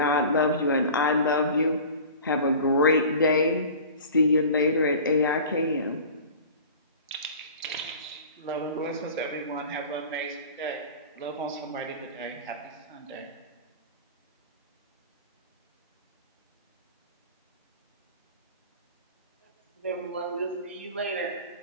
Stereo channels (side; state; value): both; inverted; correlation -0.39